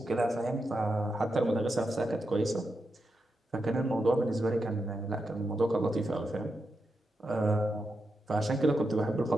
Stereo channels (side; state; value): both; normal; correlation 0.86